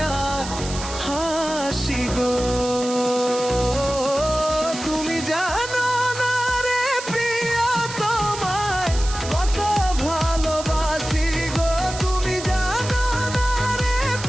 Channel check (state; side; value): noise; right; hiss, 10 dB below the sound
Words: হাসি গো। তুমি জানো না রে প্রিয় তোমায় কত ভালোবাসি গো। তুমি জানো না রে